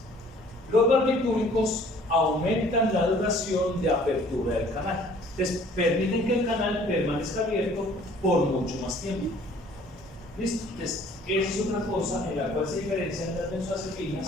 Los barbitúricos aumentan la duración de apertura del canal. Entonces, permiten que el canal permanezca abierto por mucho más tiempo. ¿Listo? Entonces, esa es otra cosa en la cual se diferencian las benzodiazepinas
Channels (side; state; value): both; normal; correlation 0.54